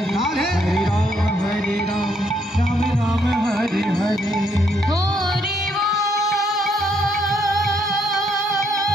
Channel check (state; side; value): normal; both; correlation 0.72